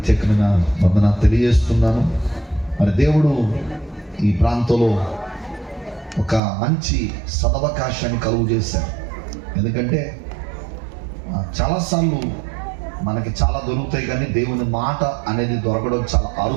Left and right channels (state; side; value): drops out; left; at 6.4 s